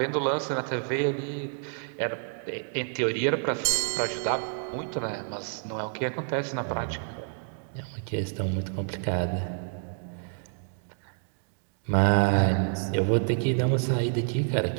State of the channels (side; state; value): left; silent; 59 dB below the other